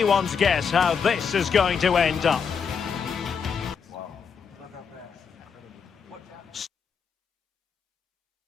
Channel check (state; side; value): quieter; right; 6.4 dB